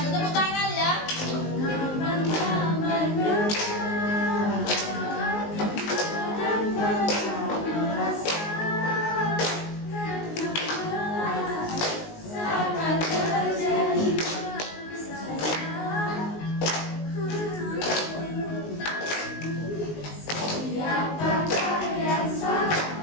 tepuk tangan ya.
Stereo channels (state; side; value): late; right; 19 ms